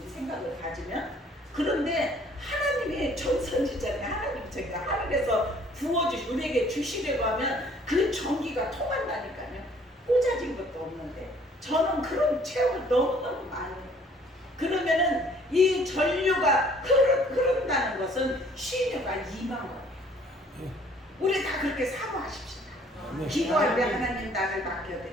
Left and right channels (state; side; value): normal; both; correlation 0.58